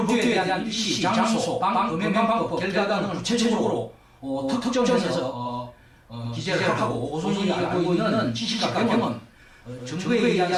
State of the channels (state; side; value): identical; both; correlation 1.00